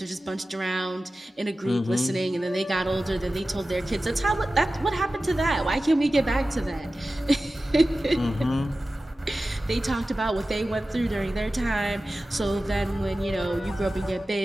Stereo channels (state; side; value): normal; both; correlation 0.95